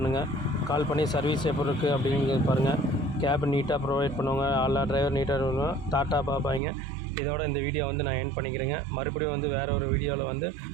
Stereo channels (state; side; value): drops out; left; at 6.6 s